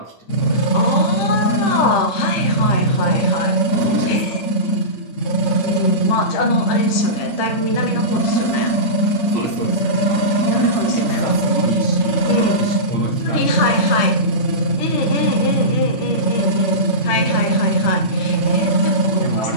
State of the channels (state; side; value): late; right; 10 ms